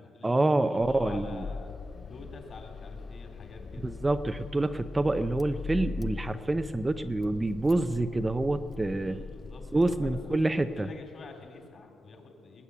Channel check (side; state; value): both; normal; correlation 0.96